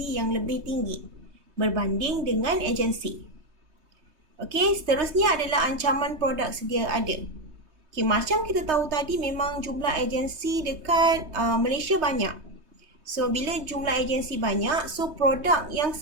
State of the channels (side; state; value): left; late; 3.2 ms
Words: yang lebih tinggi berbanding dengan agensi. Okay, seterusnya adalah ancaman produk sedia ada. Okay, macam kita tahu tadi memang jumlah agensi dekat Malaysia banyak. So, bila jumlah agensi banyak, so produk yang